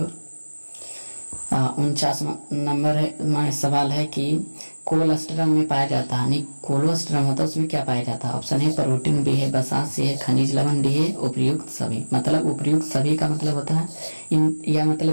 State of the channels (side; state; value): both; inverted; correlation -1.00